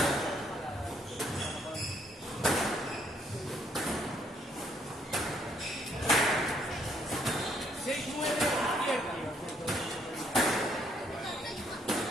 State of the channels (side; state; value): both; normal; correlation 0.69